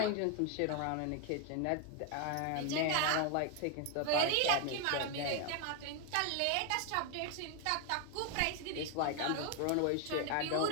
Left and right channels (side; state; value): both; different; correlation 0.01